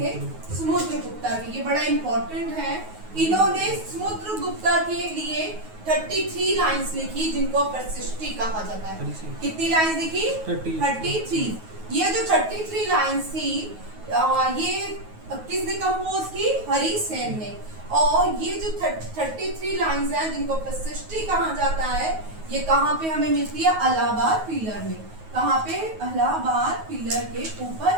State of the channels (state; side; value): late; left; 9.4 ms